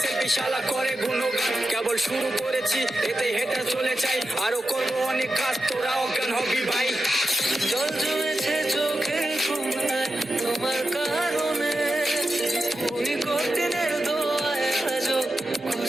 সেলফি শালা করে গুণগান। কেবল শুরু করেছি এতে হেঁটে চলে চাই, আরো করবো অনেক কাজ তোরা অজ্ঞান হবি ভাই। জল জমেছে চোখে ঘুমায় তোমার কারণে, ওই কঠিনের দোয়ায় আজও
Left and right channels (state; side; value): normal; both; correlation 0.90